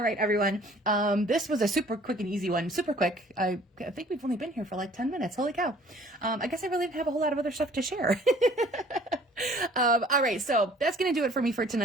right, everyone. This was a super quick and easy one. Super quick. I think we've only been here for like 10 minutes. Holy cow. I guess I really didn't have a whole lot of other stuff to share. All right, so that's going to do it for me for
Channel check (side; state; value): both; normal; correlation 0.54